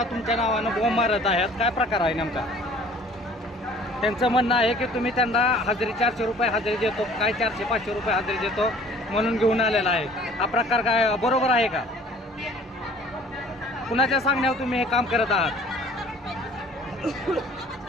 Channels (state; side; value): normal; both; correlation 0.52